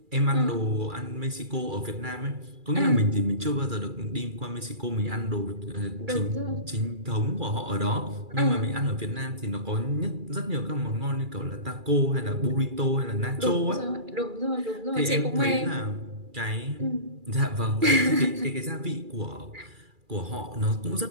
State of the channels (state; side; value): late; left; 2.3 ms